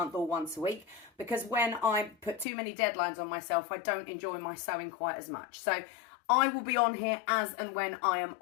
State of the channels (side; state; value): right; drops out; at 2.5 s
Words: or once a week, because when I put too many deadlines on myself, I don't enjoy my sewing quite as much. So I will be on here as and when I am